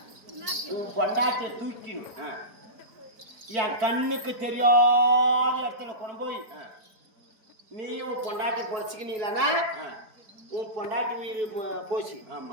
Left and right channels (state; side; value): late; left; 4.6 ms